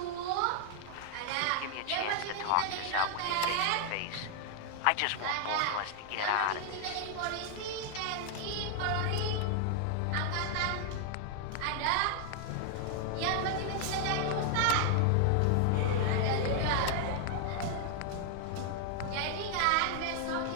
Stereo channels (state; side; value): different; both; correlation 0.00